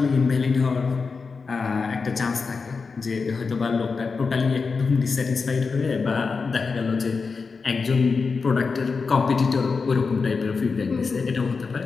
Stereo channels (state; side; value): quieter; right; 4.8 dB